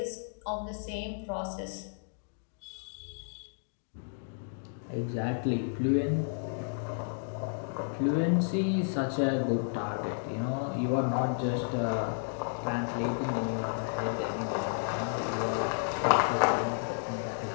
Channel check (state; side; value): silent; right; digital silence